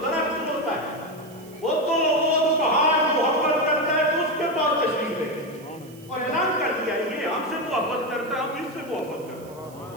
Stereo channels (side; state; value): right; noise; hiss, 24 dB below the sound